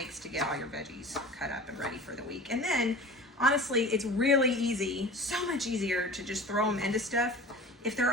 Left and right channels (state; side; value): normal; both; correlation 0.38